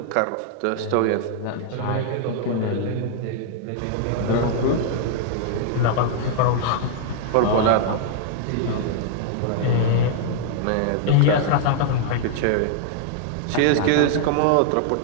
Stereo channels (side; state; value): both; different; correlation -0.01